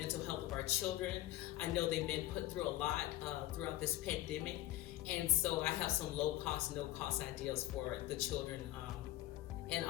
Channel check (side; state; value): right; quieter; 15.3 dB